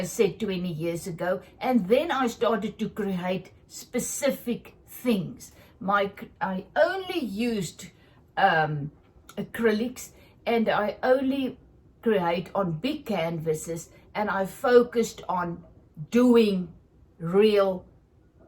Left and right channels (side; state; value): both; identical; correlation 1.00